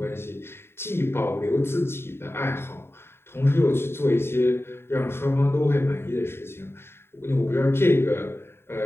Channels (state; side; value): late; right; 0.11 ms